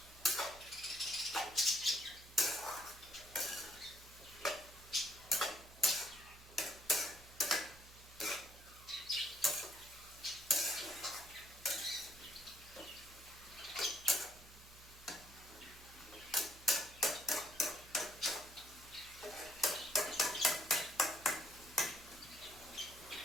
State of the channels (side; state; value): right; noise; hum, 19 dB below the sound